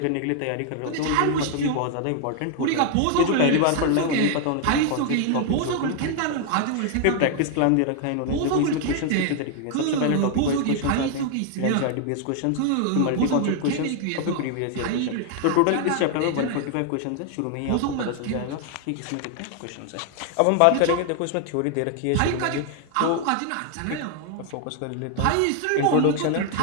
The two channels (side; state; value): both; different; correlation 0.00